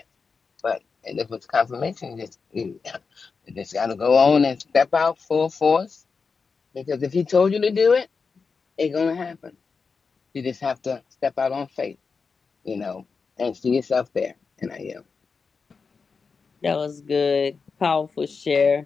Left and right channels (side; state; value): right; quieter; 5.0 dB